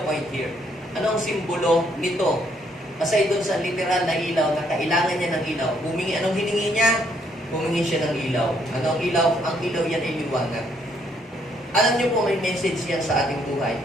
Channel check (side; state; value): both; normal; correlation 0.70